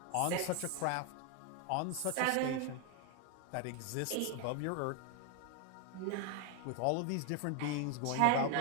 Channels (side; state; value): both; different; correlation 0.01